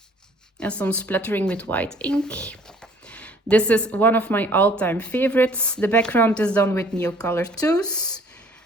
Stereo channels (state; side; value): normal; both; correlation 0.56